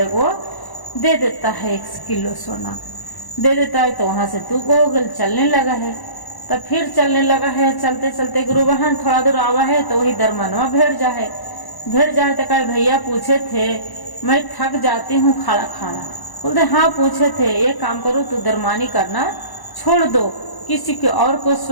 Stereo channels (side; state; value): right; late; 1.1 ms